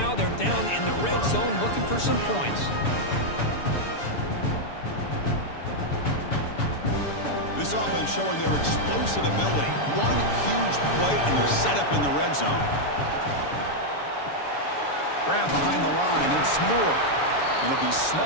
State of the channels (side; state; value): right; late; 6.9 ms